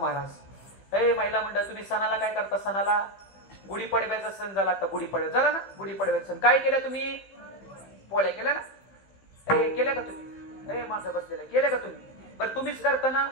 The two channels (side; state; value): right; late; 15 ms